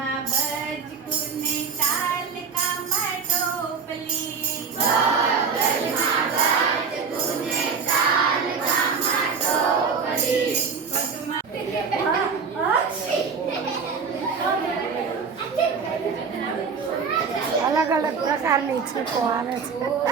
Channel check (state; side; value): quieter; left; 5.6 dB